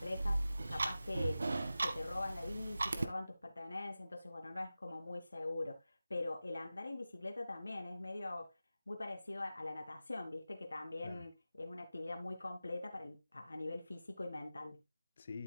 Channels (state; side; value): inverted; both; correlation -0.94